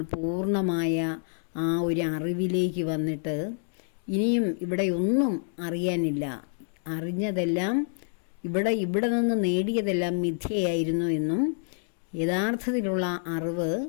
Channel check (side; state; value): right; silent; digital silence